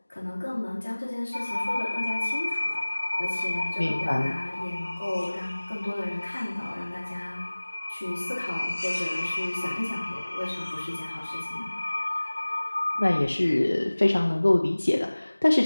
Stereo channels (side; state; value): both; inverted; correlation -1.00